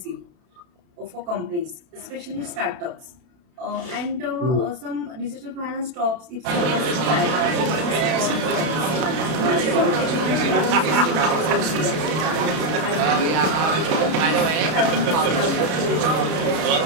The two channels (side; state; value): left; late; 32 ms